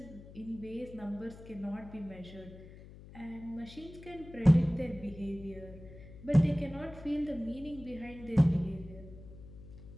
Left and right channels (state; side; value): noise; left; hum, 17 dB below the sound